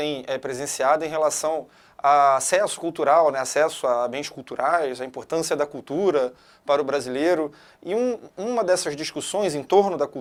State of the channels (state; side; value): identical; both; correlation 1.00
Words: presenciado em relação a acesso cultural, né, acesso a bens culturais, a importância da cultura para o brasileiro. E uma dessas discussões em torno da